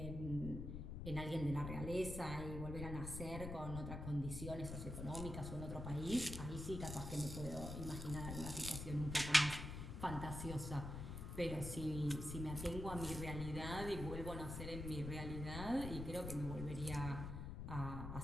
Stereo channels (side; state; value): left; noise; rumble, 6 dB below the sound